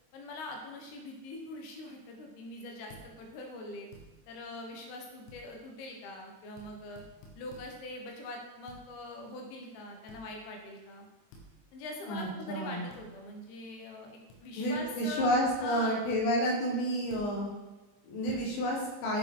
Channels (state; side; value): late; right; 22 ms